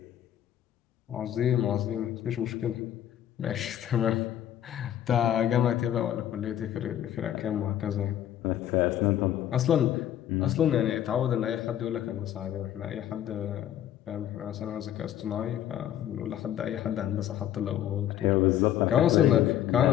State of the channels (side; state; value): right; quieter; 11.3 dB